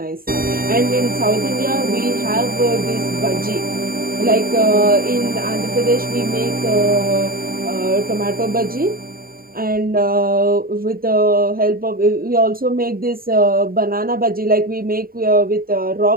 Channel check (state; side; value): late; left; 0.43 ms